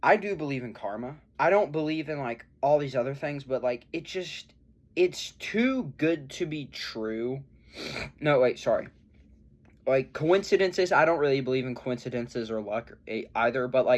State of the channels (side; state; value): both; identical; correlation 1.00